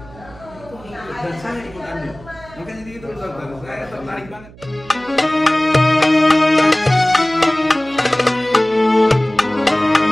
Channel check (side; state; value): right; noise; hum, 21 dB below the sound